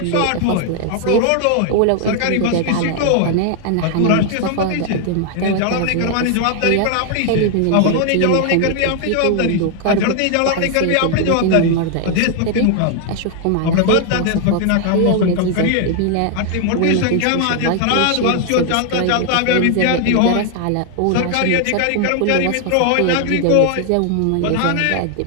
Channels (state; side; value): different; both; correlation 0.00